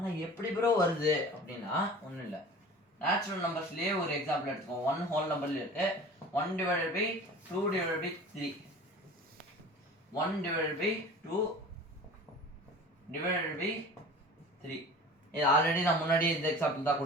எப்படி ப்ரோ வருது அப்படின்னா ஒண்ணும் இல்ல நேச்சுரல் நம்பர்ஸ்லயே ஒரு எக்ஸாம்பிள் எடுத்துக்கோங்க 1 ஹோல் நம்பர்ல இருக்கு 1/2 by 3 1 divided by 2 divided by 3. இது ஆல்ரெடி நான் முன்னாடி இந்த எக்ஸாம்பிள் தான்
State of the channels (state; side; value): normal; both; correlation 0.40